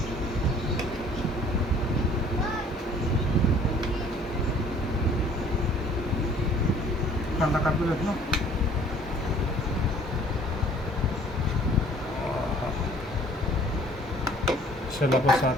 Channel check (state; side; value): normal; both; correlation 0.55